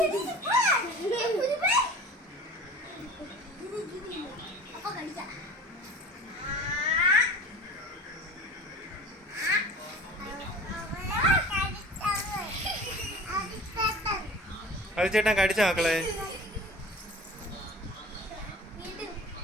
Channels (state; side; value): normal; both; correlation 0.40